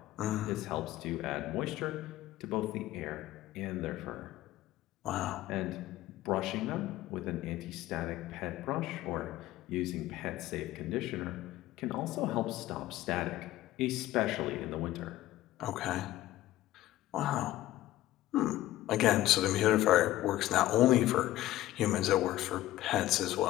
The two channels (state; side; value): quieter; right; 15.1 dB